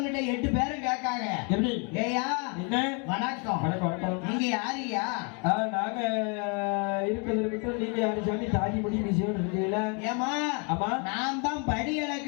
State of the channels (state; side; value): quieter; right; 35.0 dB